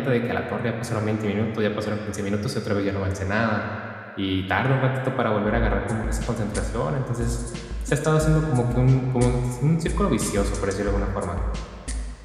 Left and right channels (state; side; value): identical; both; correlation 1.00